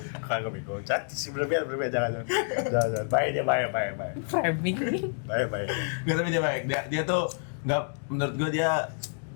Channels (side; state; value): right; silent; 59 dB below the other